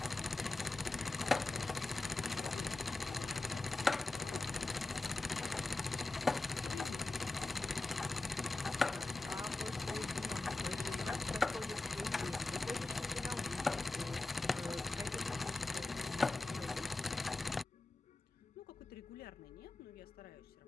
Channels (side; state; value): right; quieter; 3.2 dB